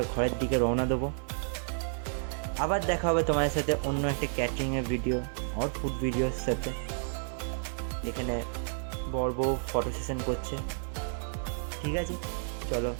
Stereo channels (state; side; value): silent; left; digital silence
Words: ঘরের দিকে রওনা দেবো। আবার দেখা হবে তোমাদের সাথে অন্য একটা ক্যাটারিংয়ের ভিডিও আর ফুড ভিডিওর সাথে। এখানে বর বউ ফটো সেশন করছে। ঠিক আছে, চলো